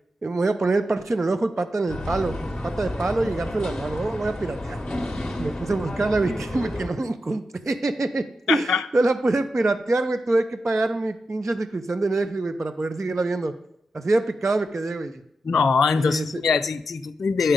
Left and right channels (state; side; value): normal; both; correlation 0.88